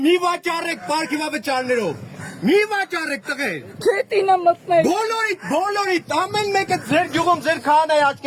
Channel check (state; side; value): identical; both; correlation 1.00